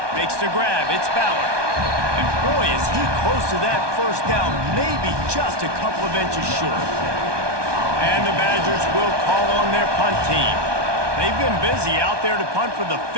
Makes the grab. It's Ballard. And boy, is he close to that first down, maybe just a couple of inches short. And the Badgers will call on their punt team. They've been busy out there to punt for the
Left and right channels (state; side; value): late; left; 1.2 ms